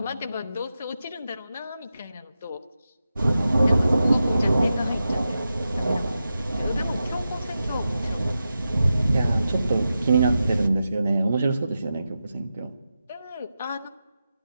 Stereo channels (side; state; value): both; inverted; correlation -0.91